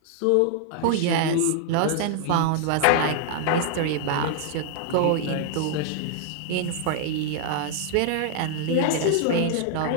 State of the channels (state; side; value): different; both; correlation 0.00